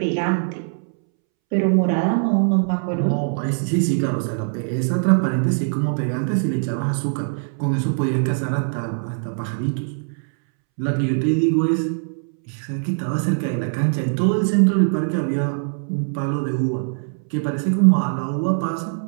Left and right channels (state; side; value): silent; left; 64 dB below the other